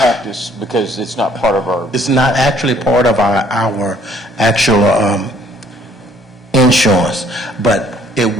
us because it's not part of our, It's not actually part of our actual insurance, but it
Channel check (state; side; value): normal; both; correlation 0.61